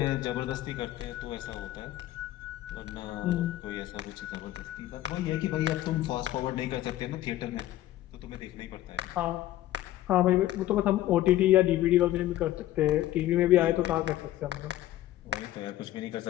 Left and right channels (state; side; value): quieter; right; 14.3 dB